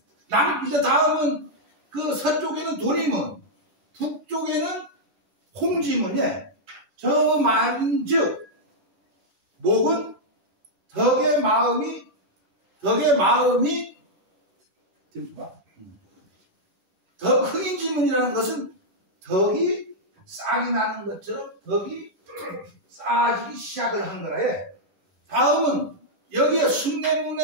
이제 다음은 서쪽에는 도리문. 북쪽에는 홍지문에 저 말인즉 목은 덕의 마음이 흥인지문이라는 것은 덕이 싹이 나는 것처럼 덕이 쌓아지기 시작을 한 거라 해. 다음은 여기에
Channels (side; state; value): left; late; 11 ms